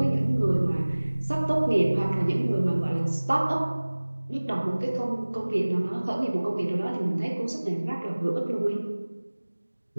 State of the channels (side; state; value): both; inverted; correlation -1.00